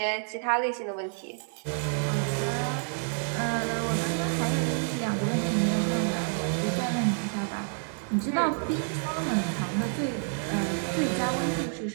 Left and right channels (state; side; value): silent; left; 59 dB below the other